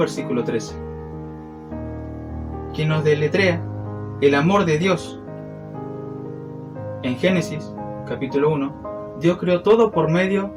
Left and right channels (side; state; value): both; identical; correlation 1.00